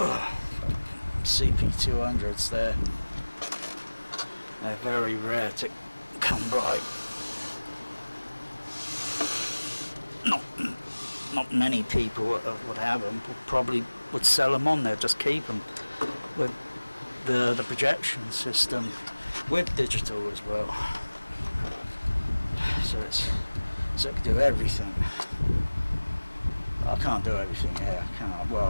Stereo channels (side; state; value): both; inverted; correlation -1.00